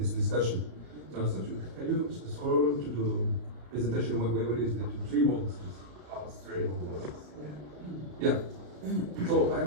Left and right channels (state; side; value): late; left; 33 ms